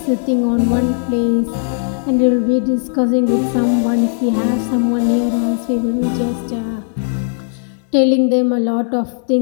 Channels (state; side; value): silent; right; digital silence